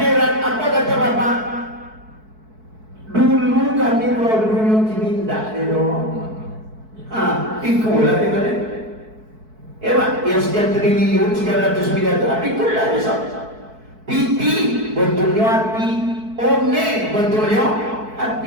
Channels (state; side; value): late; left; 4.6 ms